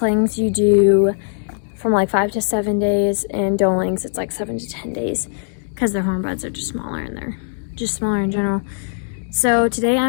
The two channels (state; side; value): silent; right; digital silence